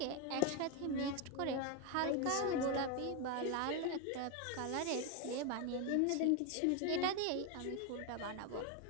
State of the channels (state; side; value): different; both; correlation 0.02